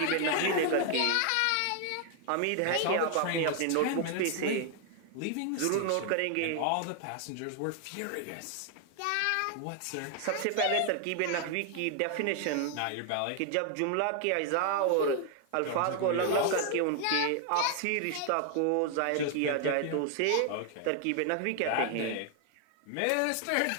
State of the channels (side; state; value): both; different; correlation 0.00